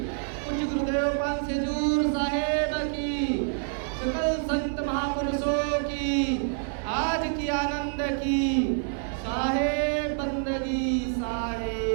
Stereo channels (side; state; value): left; silent; 60 dB below the other